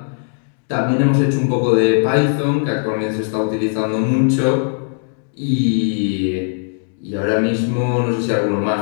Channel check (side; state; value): right; silent; 59 dB below the other